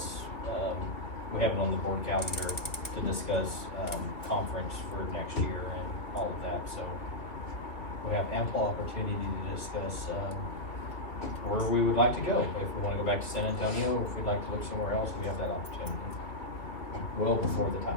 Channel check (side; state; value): right; late; 2.9 ms